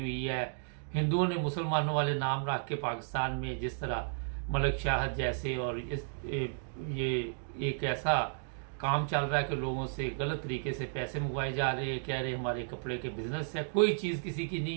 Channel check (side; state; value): left; silent; digital silence